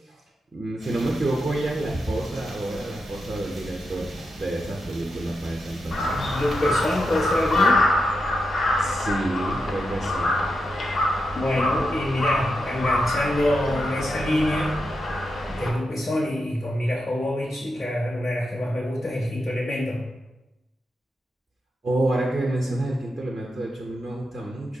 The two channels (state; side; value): normal; both; correlation 0.86